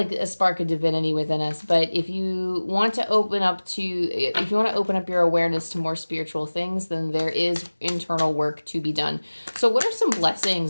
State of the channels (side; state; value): both; inverted; correlation -1.00